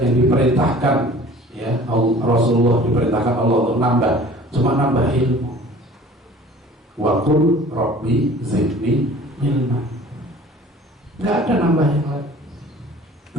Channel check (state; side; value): normal; both; correlation 0.47